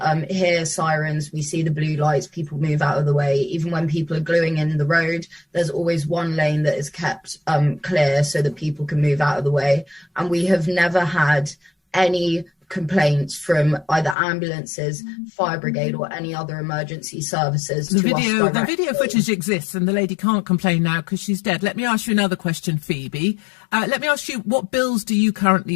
hear sirens, we see the blue lights, people move out of the way. Even when people are gluing in the road, there's always one lane that is kept clear so that people can move out of the way. And we have never had any complaints from either ambulances, fire brigade, or any other emergency services. The video footage exists, and the lady can't complain now because she's dead. Let me ask you another question, Phoebe. Let me ask you, what bills do you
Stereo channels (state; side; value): drops out; right; at 14.2 s